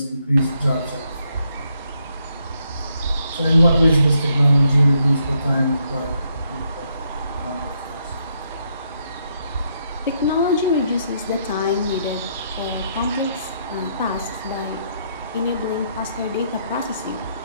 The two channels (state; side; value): inverted; both; correlation -0.75